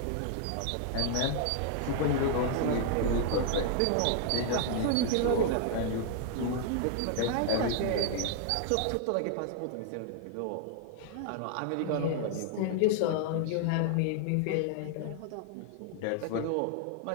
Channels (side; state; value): both; different; correlation 0.00